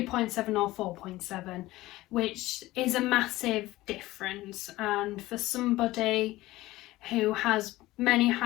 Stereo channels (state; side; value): quieter; right; 17.7 dB